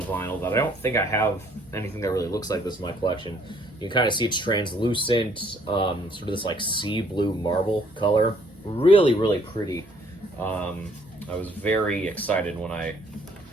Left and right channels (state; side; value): normal; both; correlation 0.63